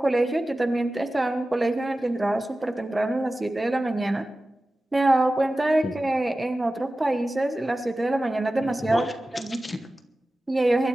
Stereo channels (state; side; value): normal; both; correlation 0.95